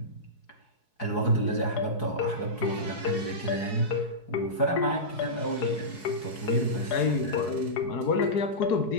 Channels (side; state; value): right; late; 4.7 ms